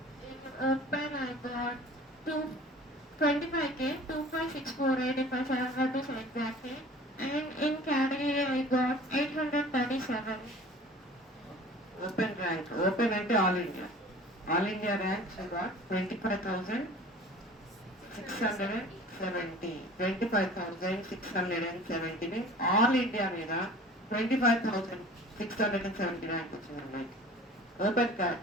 In Open I got 25K, 25,648 if I remember this exactly. And in category I got 837. Open rank. Open అంటే all India. All India rank she got 25,670. 25,670 means all India మీద 25,670 rank వచ్చింది అమ్మాయి. Open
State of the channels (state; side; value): normal; both; correlation 0.44